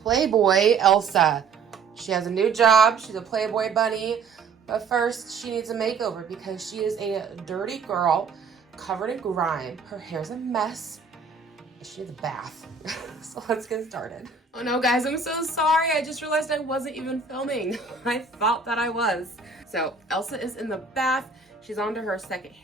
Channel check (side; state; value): left; quieter; 5.1 dB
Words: Elsa. She has a new job. She's a Playboy bunny, but first she needs a makeover because she is a dirty girl covered in grime. Her hair's a mess. She needs a bath. So let's get started. Oh no, guys, I'm so sorry. I just realized I wasn't even filming. I thought that I was. So Elsa is in the bath. She's on to her second